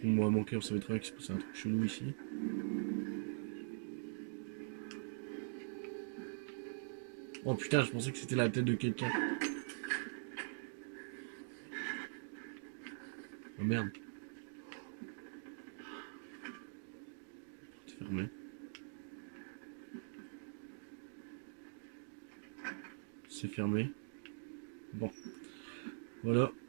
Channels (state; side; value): silent; left; digital silence